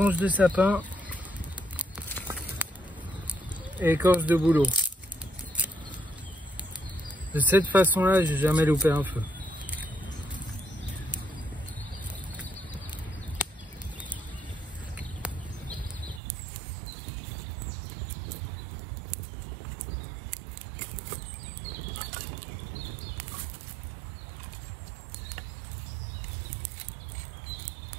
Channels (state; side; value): drops out; left; at 16.2 s